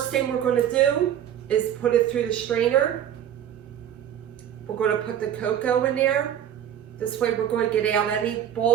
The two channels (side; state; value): left; quieter; 10.1 dB